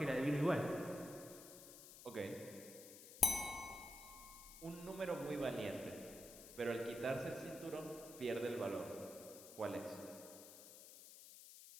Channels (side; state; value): left; noise; hiss, 15 dB below the sound